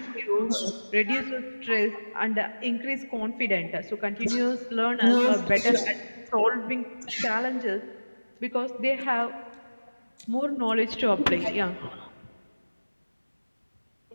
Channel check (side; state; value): both; inverted; correlation -1.00